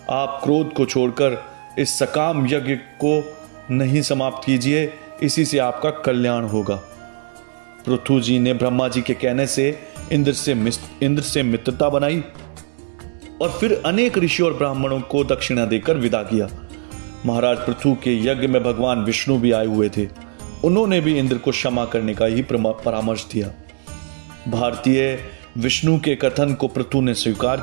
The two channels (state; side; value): silent; left; digital silence